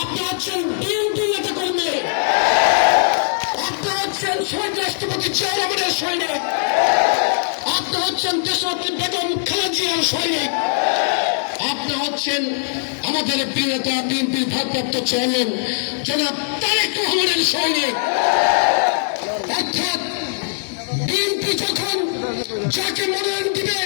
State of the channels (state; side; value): silent; right; digital silence